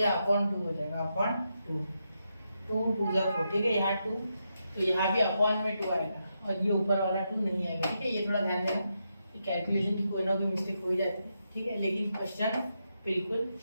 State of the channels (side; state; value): both; inverted; correlation -0.84